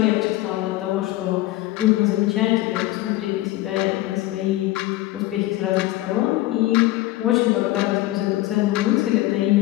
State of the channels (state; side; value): quieter; right; 16.9 dB